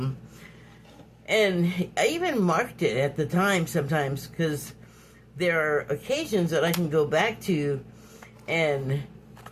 And I even marked it at the time sometimes, because there are occasions that I can go back to, and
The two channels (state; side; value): identical; both; correlation 1.00